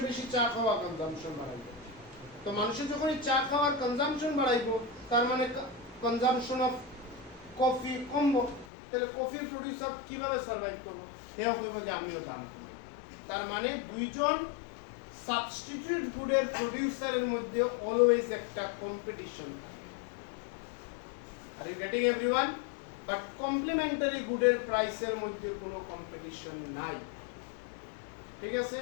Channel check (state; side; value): drops out; right; at 8.7 s